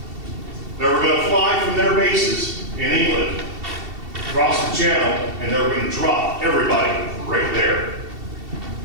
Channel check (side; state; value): left; late; 2.7 ms